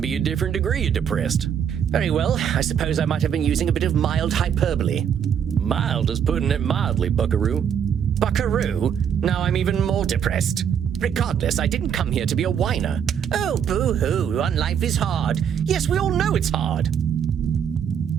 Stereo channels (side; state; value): left; quieter; 8.2 dB